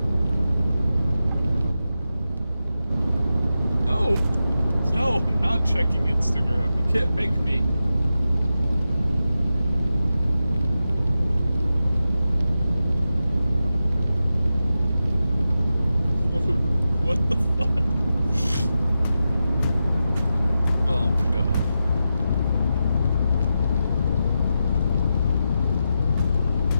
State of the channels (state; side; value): inverted; both; correlation -0.90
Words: No. No, I'm not checking Instagram. You can't make me. What the fuck? Oh my god.